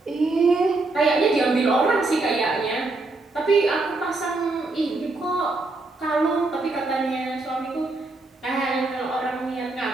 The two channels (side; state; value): left; quieter; 3.2 dB